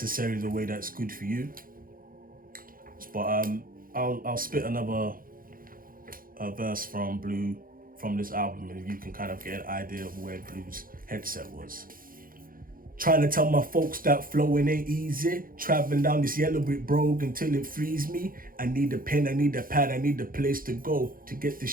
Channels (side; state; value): left; late; 0.41 ms